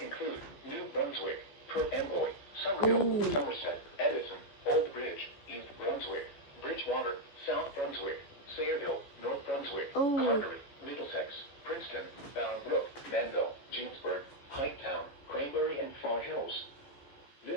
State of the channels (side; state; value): right; late; 14 ms